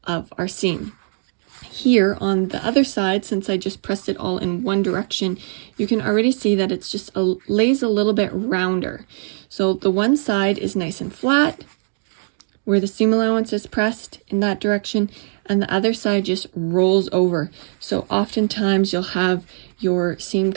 of our seam. Here on the other side, since I just pressed it all in one direction, you can already see that it's just lays a little bit rounder. So the one side is nice and flat where the seam allowance is pressed in that direction, and the other side just rolls over. So oftentimes you'll have your seam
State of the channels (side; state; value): left; silent; 65 dB below the other